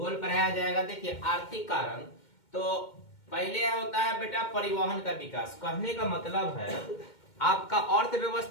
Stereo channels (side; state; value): right; late; 2.1 ms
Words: पढ़ाया जाएगा। देखिए आर्थिक कारण तो पहले होता है बेटा परिवहन का विकास। कहने का मतलब है आपका